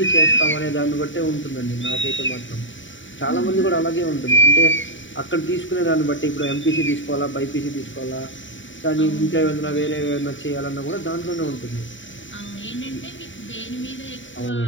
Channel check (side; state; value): right; late; 0.55 ms